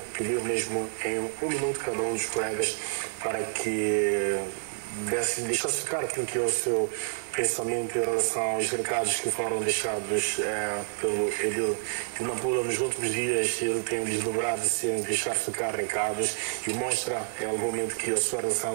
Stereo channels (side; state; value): left; silent; digital silence